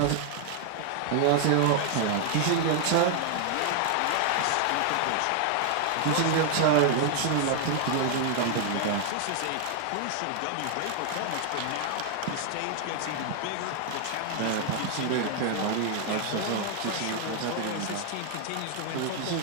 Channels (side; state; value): both; different; correlation 0.00